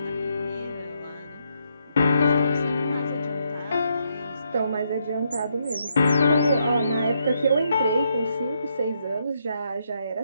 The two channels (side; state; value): both; inverted; correlation -0.77